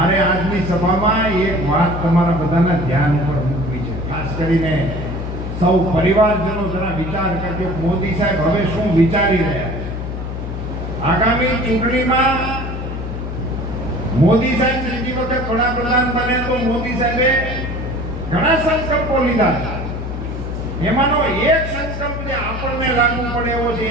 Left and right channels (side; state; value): left; noise; hum, 6 dB below the sound